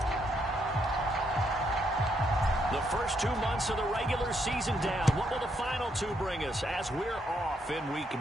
First 2 months of the regular season down. What will the final two bring us as we're off in Week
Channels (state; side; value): normal; both; correlation 0.76